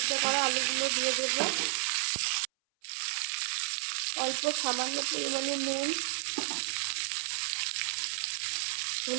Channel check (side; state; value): left; silent; 57 dB below the other